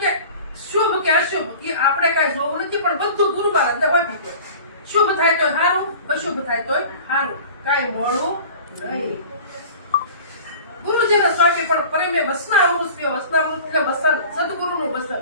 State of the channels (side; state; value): both; inverted; correlation -0.41